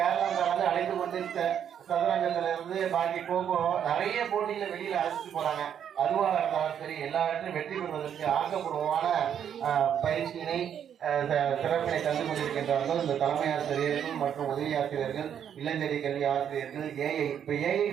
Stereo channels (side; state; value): left; quieter; 8.9 dB